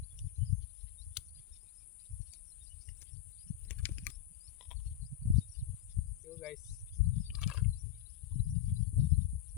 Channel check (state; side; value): quieter; right; 11.9 dB